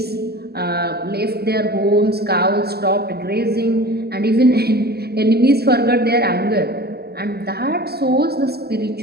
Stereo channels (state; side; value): late; left; 0.46 ms